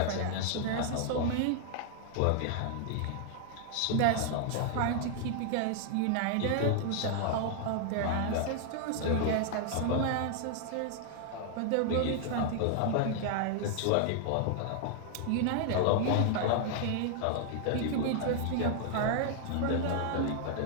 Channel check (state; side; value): different; both; correlation 0.00